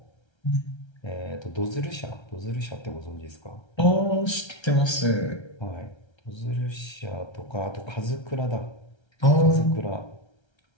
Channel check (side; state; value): right; late; 1.3 ms